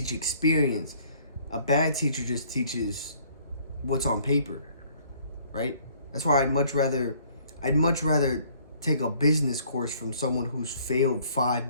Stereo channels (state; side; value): inverted; both; correlation -0.59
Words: experience. A bad teacher just teaches what's on paper, right? That's why I'd much rather take a business course from someone who's failed 5